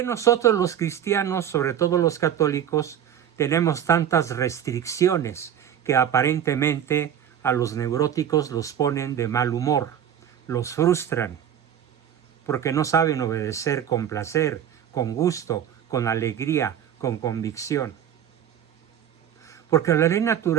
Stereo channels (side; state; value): left; quieter; 9.7 dB